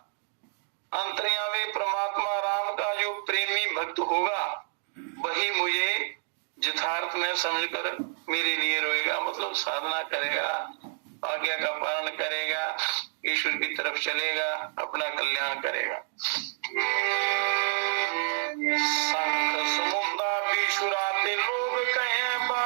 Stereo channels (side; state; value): left; silent; digital silence